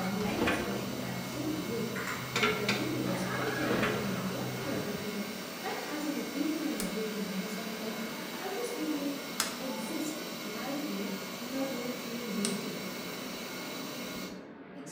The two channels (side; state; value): both; identical; correlation 1.00